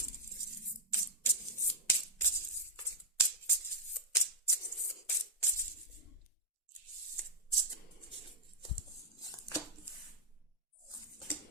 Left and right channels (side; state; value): both; normal; correlation -0.01